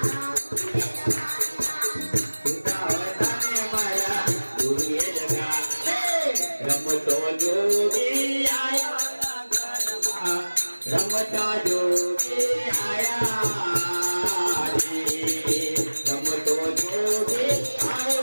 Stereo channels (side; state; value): both; inverted; correlation -1.00